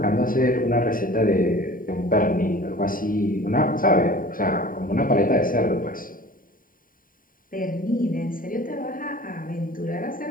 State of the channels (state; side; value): late; right; 0.41 ms